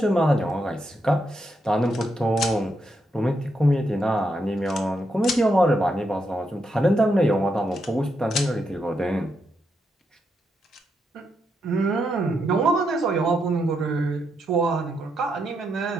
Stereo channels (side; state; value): both; normal; correlation 0.81